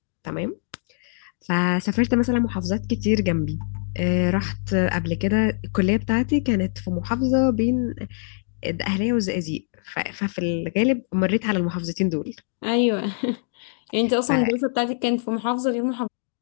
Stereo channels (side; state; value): right; silent; digital silence